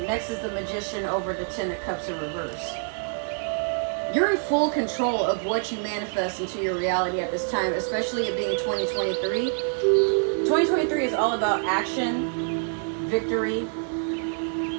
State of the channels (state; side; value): silent; left; 61 dB below the other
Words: next is the Magician over the Ten of Cups in reverse. You're in full control of what you manifest into your reality at this time, especially it being 2023. 2023 is all about action, victory,